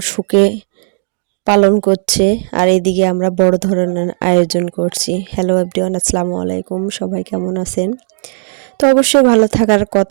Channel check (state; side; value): silent; left; digital silence